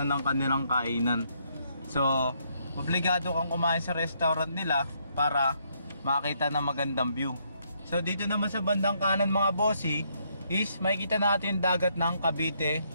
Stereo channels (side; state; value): both; inverted; correlation -0.73